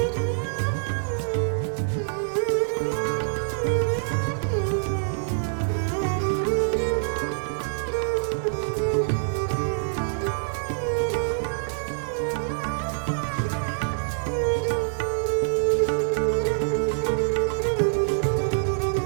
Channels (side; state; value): left; silent; digital silence